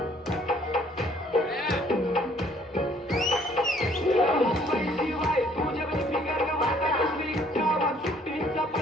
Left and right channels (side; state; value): both; normal; correlation 0.61